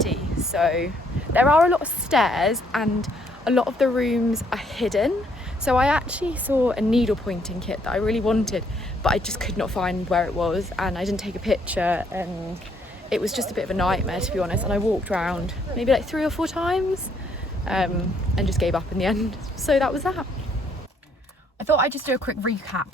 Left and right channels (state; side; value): normal; both; correlation 0.68